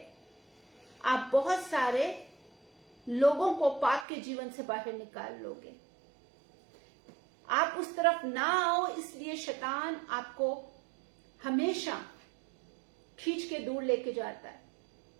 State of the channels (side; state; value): left; drops out; at 4.0 s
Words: आप बहुत सारे लोगों को पाप के जीवन से बाहर निकाल लोगे। आप उस तरफ ना आओ, इसलिए शैतान आपको हमेशा खींच के दूर लेके जाता है।